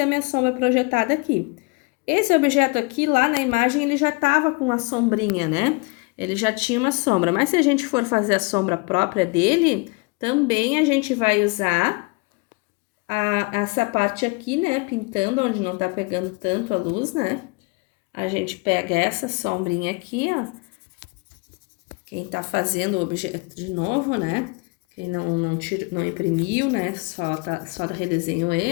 a minha sombra projetada aqui. Esse objeto aqui, lá na imagem, ele já tava com a sombrinha, né? Ele já tinha uma sombra, mas se a gente for fazer a sombra própria dele, também a gente vai usar essa parte aqui, né? Pintando onde não tá pegando tanto a luz, né? A gente pega essa sombrinha aqui, ó. Quem tá fazendo o objeto de novo, né? Quem não imprimiu, né? Só redesenhou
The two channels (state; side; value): quieter; right; 29.1 dB